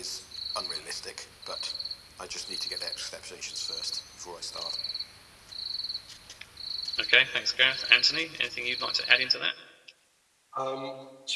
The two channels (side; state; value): both; identical; correlation 1.00